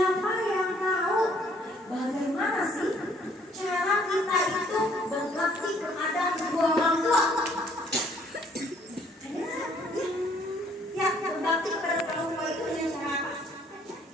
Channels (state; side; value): normal; both; correlation 0.62